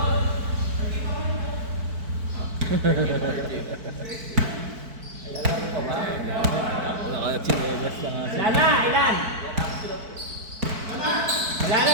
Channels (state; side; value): late; left; 4.5 ms